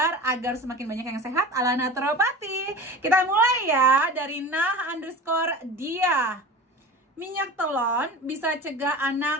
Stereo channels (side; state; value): both; normal; correlation 0.34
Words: agar semakin banyak yang sehat ala naturopati. Kita mulai ya dari nah_dia. Minyak telon bisa cegah